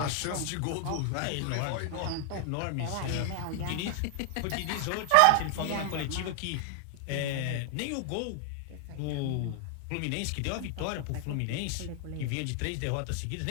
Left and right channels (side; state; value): both; different; correlation 0.00